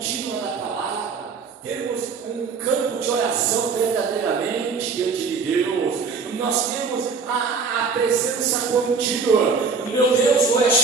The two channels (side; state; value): left; quieter; 5.1 dB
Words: da palavra, termos um campo de oração verdadeiramente diante de Deus, nós temos a presença contínua, meu Deus, o